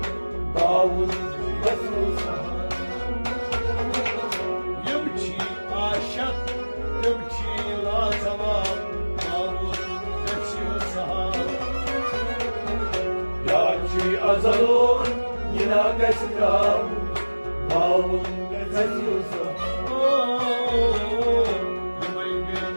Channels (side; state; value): both; inverted; correlation -1.00